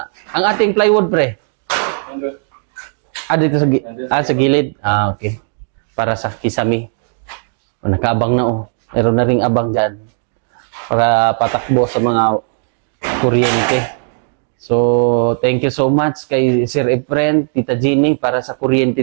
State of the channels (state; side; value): silent; left; 64 dB below the other